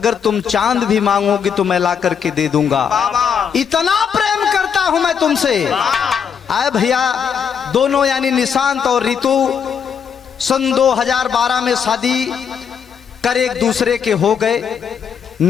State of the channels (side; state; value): right; quieter; 7.3 dB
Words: तुम चांद भी मांगोगी तो मैं ला करके दे दूंगा, इतना प्रेम करता हूं मैं तुमसे। आए भैया दोनों यानी निशांत और ऋतु सन 2012 में शादी कर एक दूसरे के हो गए।